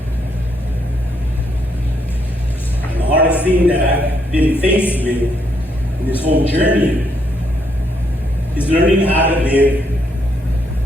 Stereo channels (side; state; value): both; normal; correlation 0.75